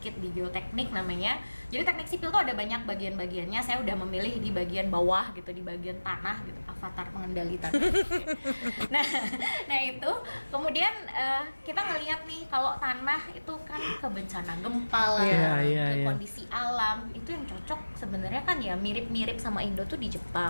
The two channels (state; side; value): inverted; both; correlation -1.00